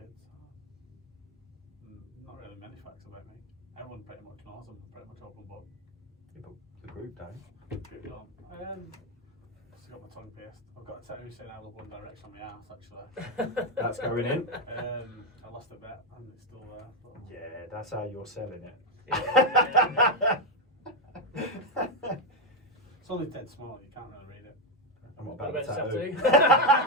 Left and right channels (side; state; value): both; normal; correlation 0.06